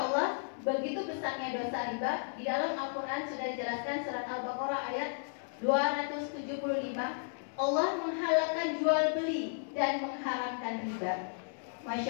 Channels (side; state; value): right; silent; 55 dB below the other